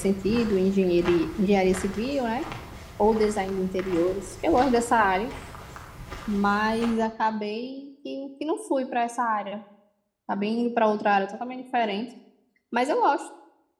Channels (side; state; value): both; identical; correlation 1.00